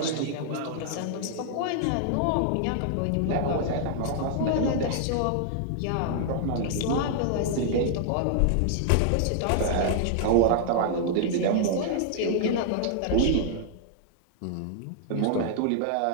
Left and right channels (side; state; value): both; different; correlation -0.01